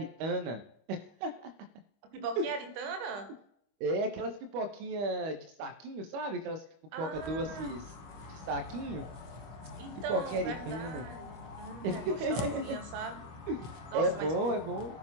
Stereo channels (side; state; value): left; late; 25 ms